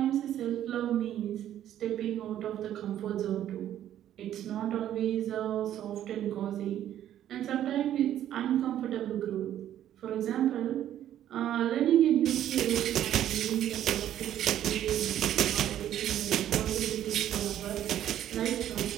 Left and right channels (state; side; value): quieter; left; 11.5 dB